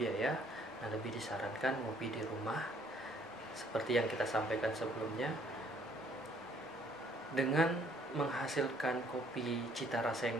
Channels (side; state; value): both; normal; correlation 0.63